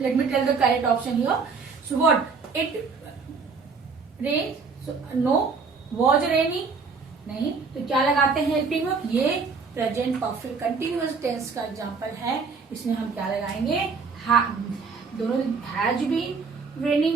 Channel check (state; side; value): quieter; left; 4.9 dB